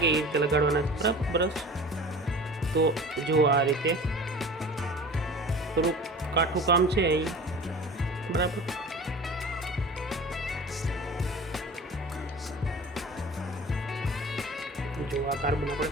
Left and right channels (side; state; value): both; normal; correlation 0.39